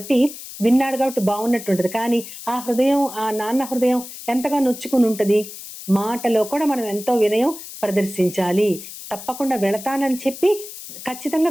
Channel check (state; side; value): noise; left; hiss, 13 dB below the sound